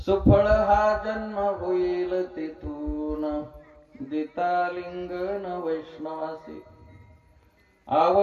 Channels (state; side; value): identical; both; correlation 1.00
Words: हा जन्म होईल तिथून, दिता लिंगन वैष्णवासी,